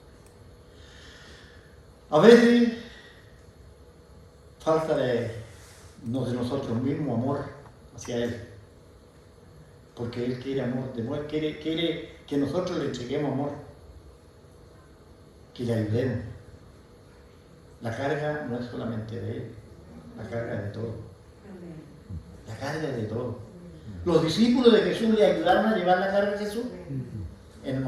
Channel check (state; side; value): identical; both; correlation 1.00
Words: A veces falta de nosotros mismos amor hacia Él, porque Él quiere amor, quiere que nosotros le entreguemos amor, que le ayudemos. La carga no es solamente de Él, la carga es de todo. La carga es de todo. Los discípulos de Jesús le ayudaron a llevar la carga de Jesús. En el